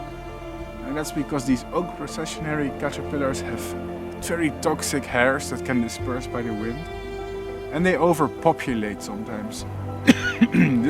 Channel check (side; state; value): both; identical; correlation 1.00